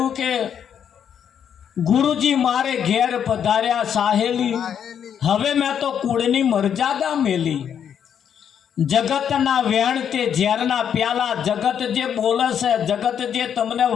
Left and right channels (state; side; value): quieter; right; 8.4 dB